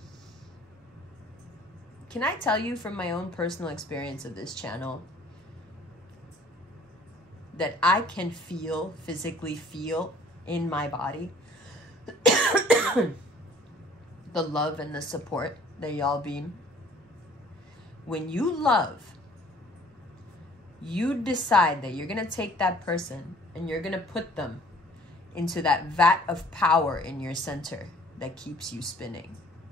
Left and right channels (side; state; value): both; normal; correlation 0.55